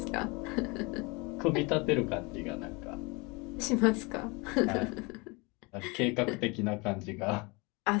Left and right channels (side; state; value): right; quieter; 27.6 dB